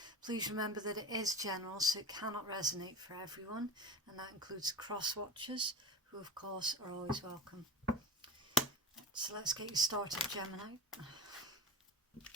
Please remember that it is general, so it cannot resonate for everyone, and that includes cross-watchers, who of course are always welcome. So let's get you started, Gemini.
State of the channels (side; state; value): both; normal; correlation 0.28